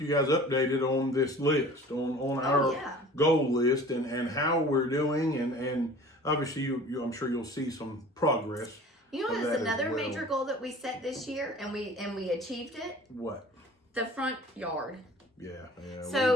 guys updated on this list, on our goal list and how we're doing, and obviously I'm sure you'll see some progress. That's another major goal that we set this year, and we achieved it. What? The front yard. Yeah.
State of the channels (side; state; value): both; normal; correlation 0.44